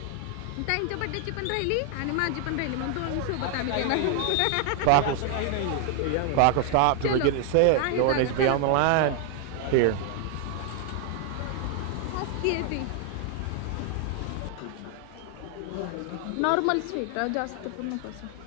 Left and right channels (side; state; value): both; different; correlation 0.00